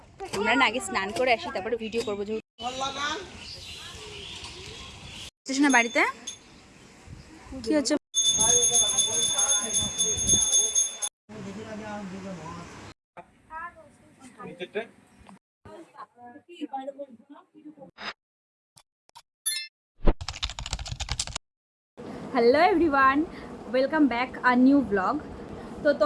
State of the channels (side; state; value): both; identical; correlation 1.00